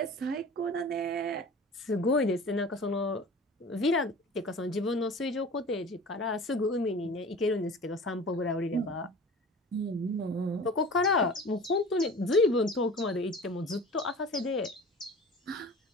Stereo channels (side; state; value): both; normal; correlation 0.40